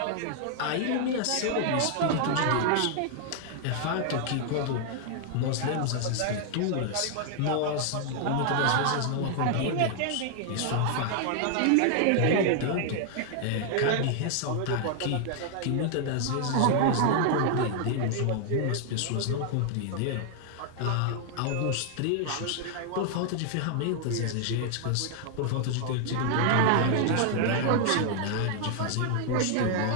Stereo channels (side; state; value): both; different; correlation 0.00